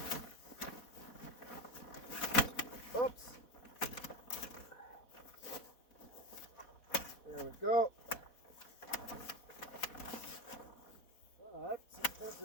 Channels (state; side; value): late; right; 4.1 ms